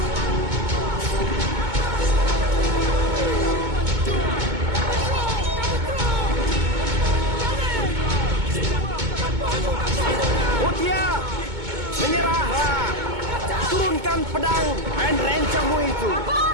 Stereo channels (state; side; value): late; left; 2.2 ms